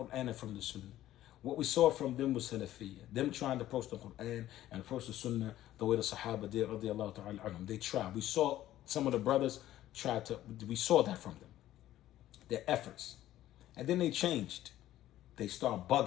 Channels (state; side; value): quieter; right; 13.7 dB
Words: and from the Sunnah. What we saw from them was Salafiyya. Them trying to approach the Quran and approach the Sunnah the way the Sahaba did, radiallahu ta'ala anhum. They tried. We saw some of the brothers we saw that from them. Their efforts. And then they changed. They start